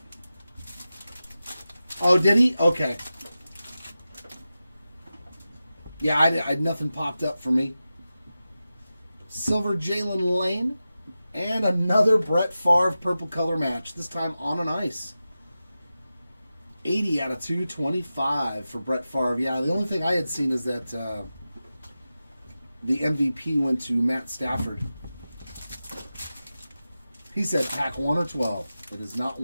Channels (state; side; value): inverted; both; correlation -0.93